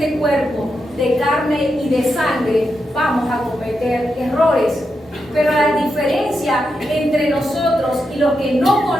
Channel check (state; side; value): normal; both; correlation 0.85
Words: cuerpo de carne y de sangre, vamos a cometer errores. Pero la diferencia entre nosotros y los que no